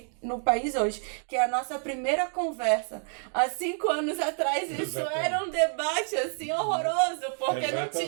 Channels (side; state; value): left; silent; 57 dB below the other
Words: no país hoje, que é a nossa primeira conversa. Há 5 anos atrás isso era um debate assim horroroso, porque não